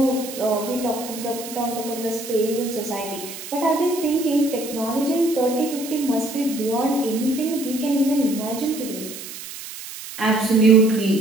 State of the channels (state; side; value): noise; right; hiss, 11 dB below the sound